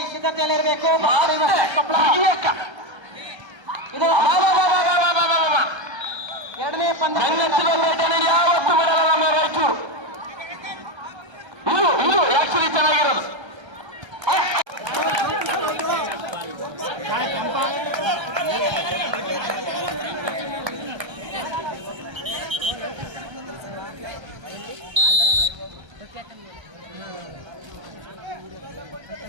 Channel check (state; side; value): late; left; 1.3 ms